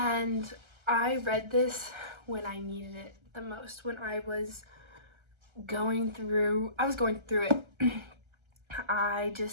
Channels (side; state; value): left; late; 1.3 ms